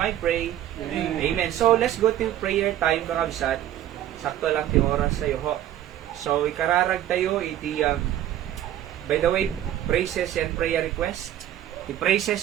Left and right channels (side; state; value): left; quieter; 12.1 dB